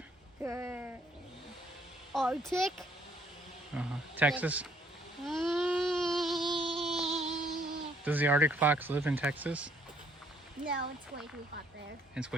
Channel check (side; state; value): both; normal; correlation 0.66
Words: Arctic. Uh-huh. Texas? Mm, Does the Arctic fox live in Texas? no, it's way too hot there. It's